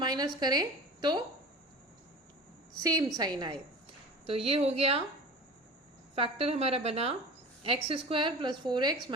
करें तो सेम साइन आए। तो ये हो गया फैक्टर हमारा बना x square plus 4x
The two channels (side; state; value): both; normal; correlation 0.35